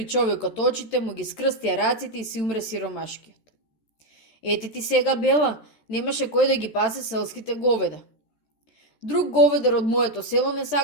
човекот очите, му ги скрстија раците и си умре сиромашкиот. Ете ти сега бела, немаше кој да ги пасе селските говеда. Друг говедар од моето село не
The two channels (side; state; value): right; late; 14 ms